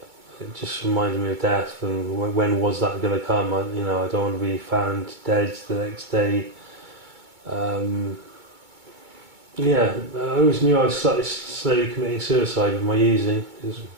It just reminded me of death, and when was that going to come? I don't want to be found dead the next day. I always knew I was slowly committing suicide with my using.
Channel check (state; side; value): late; left; 2.2 ms